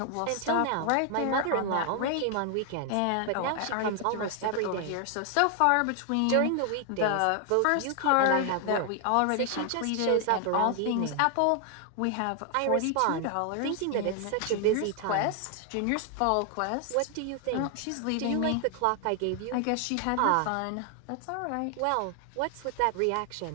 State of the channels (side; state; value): both; different; correlation 0.00